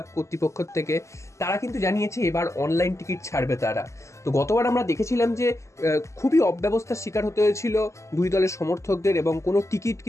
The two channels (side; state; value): right; late; 0.14 ms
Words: কর্তৃপক্ষ থেকে। তারা কিন্তু জানিয়েছে এবার অনলাইন টিকিট ছাড়বে তারা। তো গতবার আমরা দেখেছিলাম যে খুবই অব্যবস্থার শিকার হতে হয়েছিল দুই দলের সমর্থকদের, এবং কোনো টিকিট